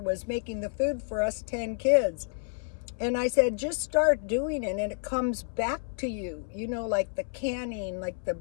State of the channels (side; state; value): right; silent; 58 dB below the other